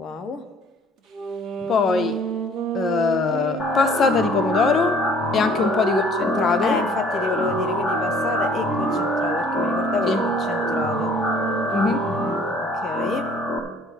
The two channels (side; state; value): both; normal; correlation 0.55